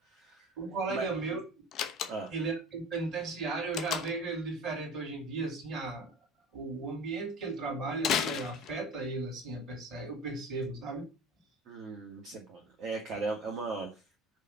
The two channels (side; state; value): both; normal; correlation 0.38